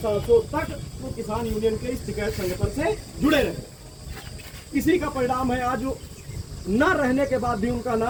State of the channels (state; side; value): identical; both; correlation 1.00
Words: तक वो किसान यूनियन के इस टिकैत संगठन से जुड़े रहे। इसी का परिणाम है आज न रहने के बाद भी उनका